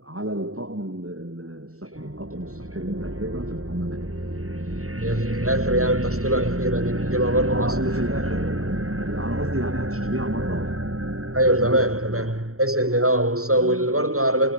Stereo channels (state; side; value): late; left; 0.64 ms